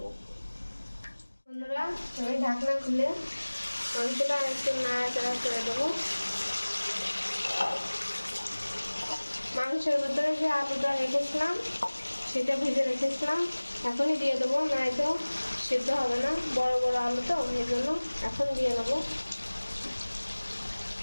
বন্ধুরা, আমি ঢাকনা খুলে মাংসটা একটু নাড়াচাড়া করে দেবো। মাংসের ভিতরে যে আলুটা রেখেছিলাম সেটা ভেজে রেখেছিলাম, এখনই দিয়ে দেবো, নয়তো সিদ্ধ হবে না, বড় বড় আলু তো, এই জন্য এখন দিয়ে নেবো।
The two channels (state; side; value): inverted; both; correlation -1.00